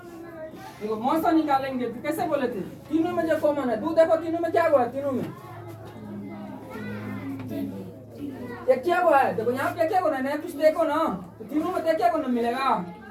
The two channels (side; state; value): both; identical; correlation 1.00